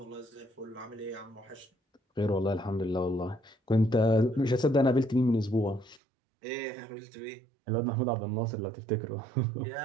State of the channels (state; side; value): drops out; left; at 6.0 s